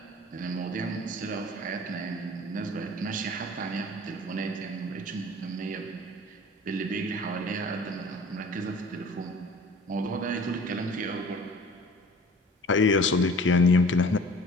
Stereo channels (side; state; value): both; normal; correlation 0.46